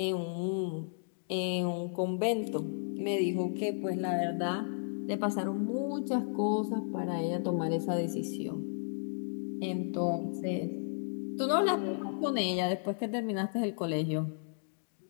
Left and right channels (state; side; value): silent; right; digital silence